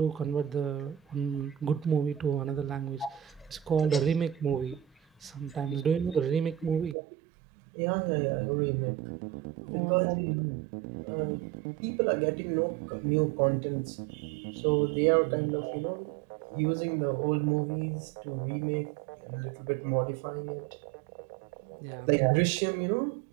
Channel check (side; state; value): left; drops out; at 7.0 s